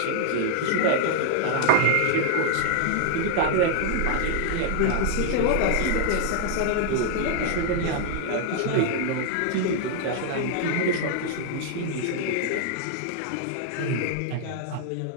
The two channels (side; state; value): both; different; correlation 0.00